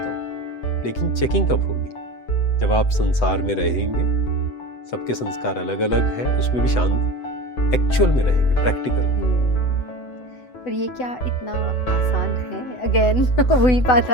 हूँ, लेकिन चेकिंग कब होगी, जब आप संसार में रहेंगे, सबके संस्कार अलग अलग है, उसमें भी शांत एक्चुअल में रहेंगे, प्रैक्टिकल। पर ये क्या इतना आसान है? अगेन वही बात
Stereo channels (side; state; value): right; late; 8.0 ms